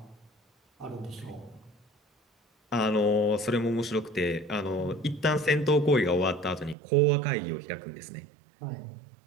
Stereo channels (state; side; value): drops out; left; at 6.8 s